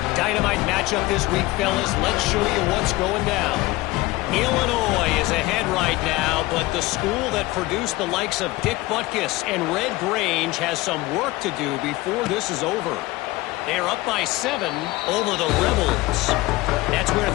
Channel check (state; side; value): quieter; right; 19.7 dB